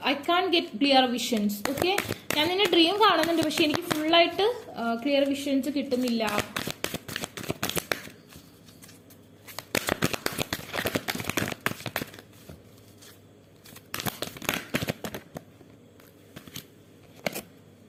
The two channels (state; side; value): identical; both; correlation 1.00